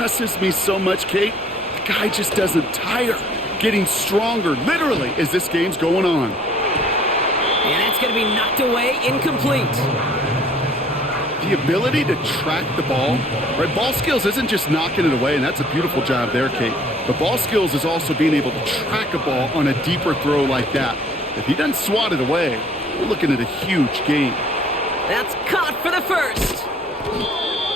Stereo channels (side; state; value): both; normal; correlation 0.56